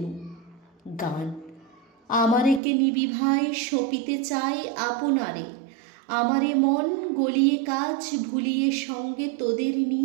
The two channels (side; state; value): left; drops out; at 2.6 s